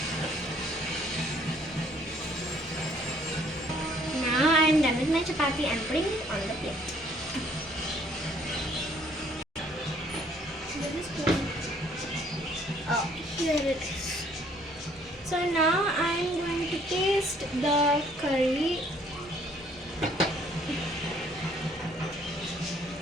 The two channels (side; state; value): both; normal; correlation 0.62